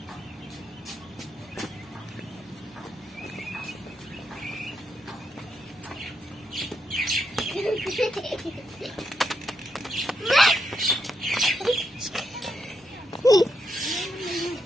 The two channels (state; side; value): normal; both; correlation 0.82